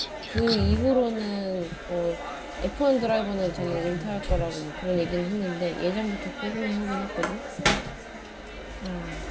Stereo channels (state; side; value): identical; both; correlation 1.00